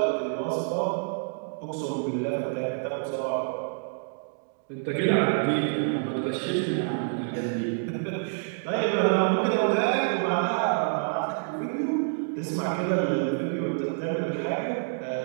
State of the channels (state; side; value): silent; left; digital silence